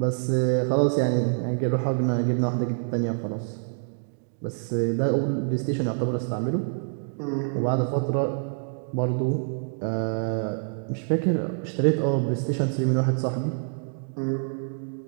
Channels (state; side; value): silent; left; digital silence